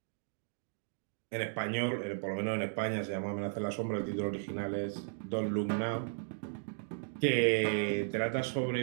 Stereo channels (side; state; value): left; silent; digital silence